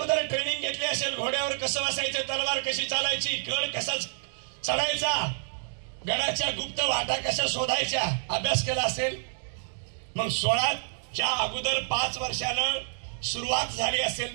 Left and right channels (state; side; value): silent; left; digital silence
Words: ट्रेनिंग घेतली असेल. घोड्यावर कसं बसायचं, तलवार कशी चालायची, गड कसा चढायचा, गडाच्या गुप्त वाटा कशा शोधायच्या अभ्यास केला असेल. मग 16च्या अगोदर 5 वर्षानं सुरुवात झाली